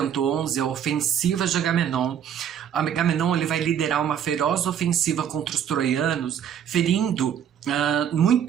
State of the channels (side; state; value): left; quieter; 8.9 dB